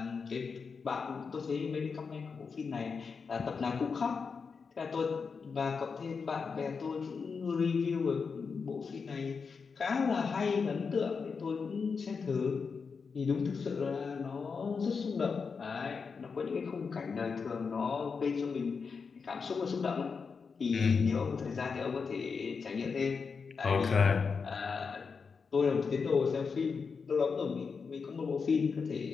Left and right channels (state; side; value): quieter; right; 5.4 dB